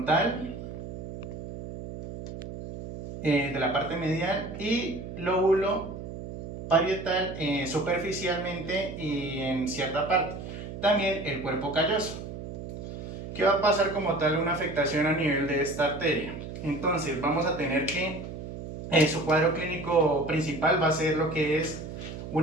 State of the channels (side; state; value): right; noise; hum, 9 dB below the sound